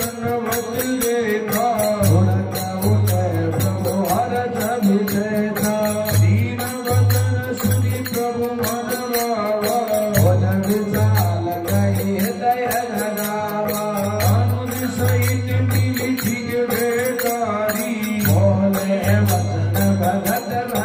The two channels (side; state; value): both; identical; correlation 1.00